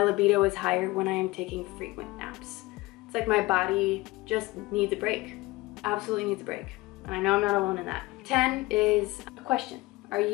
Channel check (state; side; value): quieter; right; 20.8 dB